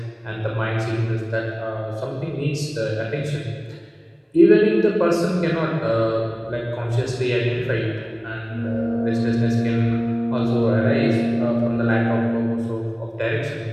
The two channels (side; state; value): both; identical; correlation 1.00